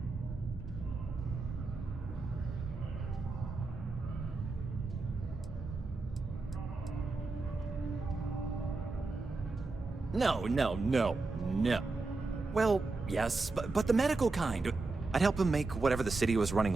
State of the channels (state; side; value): quieter; left; 3.6 dB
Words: No. Well, yes, but the medical kind. I'd help him make whatever the city was running